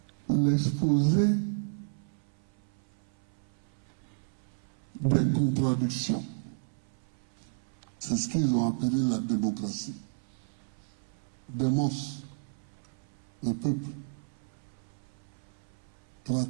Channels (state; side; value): silent; left; 56 dB below the other